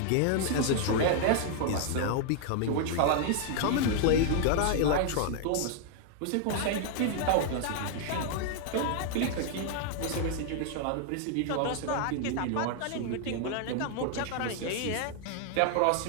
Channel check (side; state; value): both; different; correlation 0.00